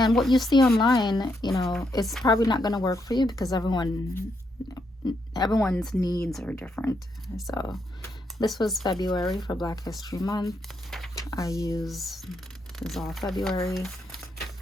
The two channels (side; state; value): both; normal; correlation 0.79